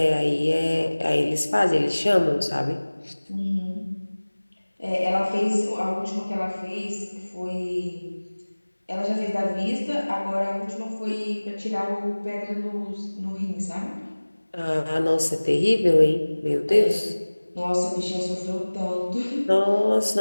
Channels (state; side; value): inverted; both; correlation -1.00